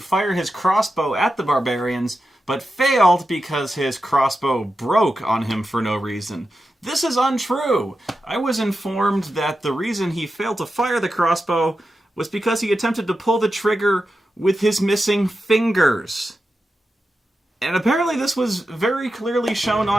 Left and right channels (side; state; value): both; normal; correlation 0.90